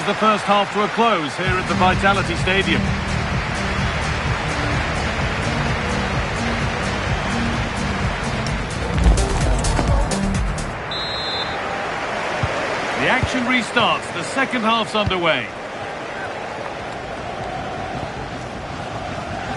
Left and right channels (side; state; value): both; identical; correlation 1.00